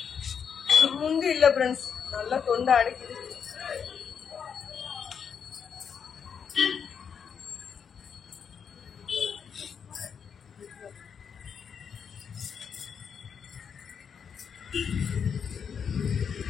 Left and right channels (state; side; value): quieter; right; 7.0 dB